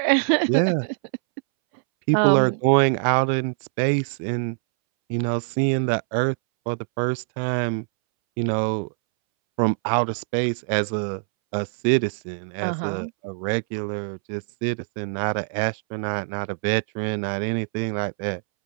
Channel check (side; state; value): left; silent; 63 dB below the other